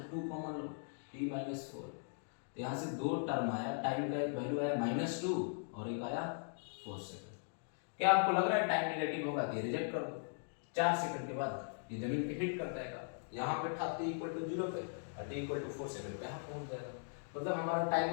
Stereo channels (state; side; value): silent; right; digital silence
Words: 2 कॉमन लो, t -4, तो यहाँ से 2 टर्म आया, टाइम का एक वैल्यू आया -2 और एक आया 4 सेकंड। क्या आपको लग रहा है टाइम रिलेटिव होगा, ये रिजेक्ट कर दो, 4 सेकंड के बाद ये जमीन पे हिट कर जाएगा, यहाँ पे था t = 0 पे, और t = 4 सेकंड पे यहाँ पहुंच जाएगा, मतलब हमारा